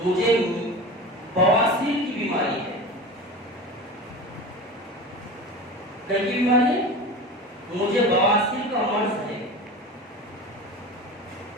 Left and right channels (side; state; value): both; normal; correlation 0.31